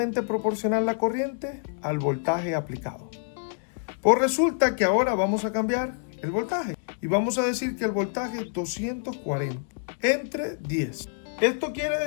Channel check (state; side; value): silent; right; digital silence